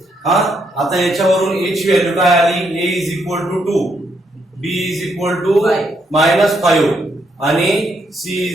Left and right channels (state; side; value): normal; both; correlation 0.76